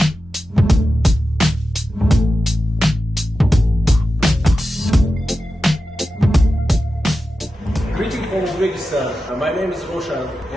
from Uzbekistan. My name is Roshan,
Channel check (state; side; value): normal; both; correlation 0.92